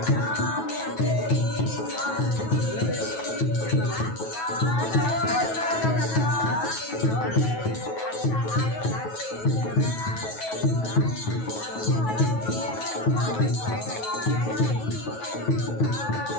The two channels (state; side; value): late; right; 9.3 ms